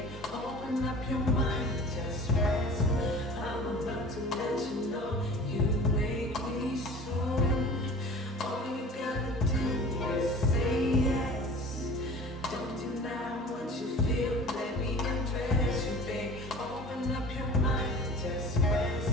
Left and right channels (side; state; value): both; normal; correlation 0.41